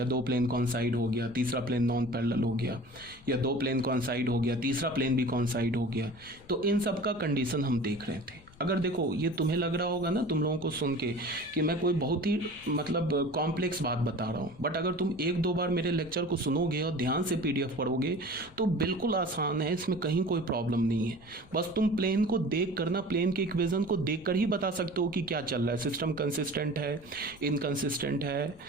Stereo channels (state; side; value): noise; left; rumble, 25 dB below the sound